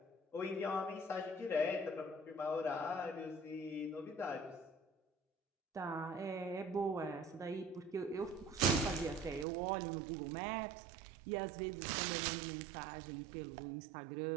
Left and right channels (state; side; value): drops out; left; at 9.5 s